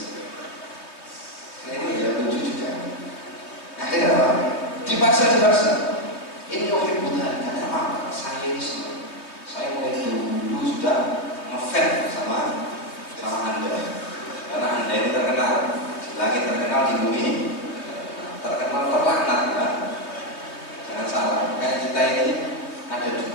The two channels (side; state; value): right; late; 3.1 ms